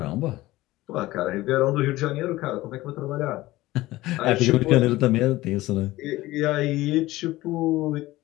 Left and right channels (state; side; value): quieter; right; 17.9 dB